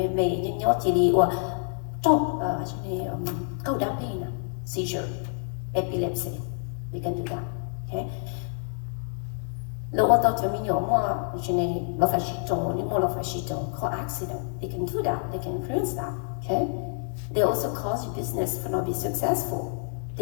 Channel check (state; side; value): silent; right; digital silence